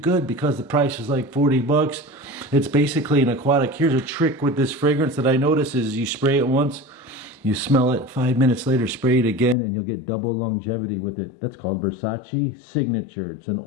because the price is like 40 bucks. It's basically an aquatic. Here's a trick with this fragrance that I notice is you spray it once, you smell it, 5 minutes later, spray it again, and you'll get double longevity with it. That's called VERSACE Signature. It's an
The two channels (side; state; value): right; drops out; at 9.6 s